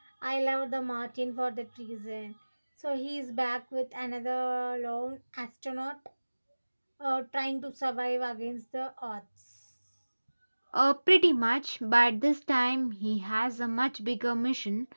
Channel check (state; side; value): inverted; both; correlation -1.00